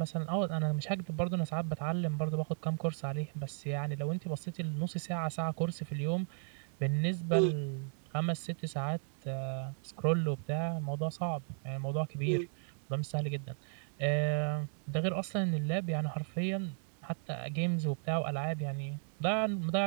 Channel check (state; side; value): silent; left; 54 dB below the other